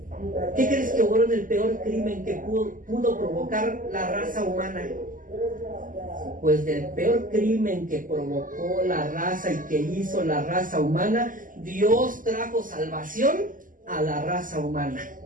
¿Qué crees que obró en el peor crimen que pudo provocar la raza humana? Pues del peor crimen que provocó la raza y que hizo la raza humana, Dios trajo salvación a la raza humana.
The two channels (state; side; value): late; left; 0.39 ms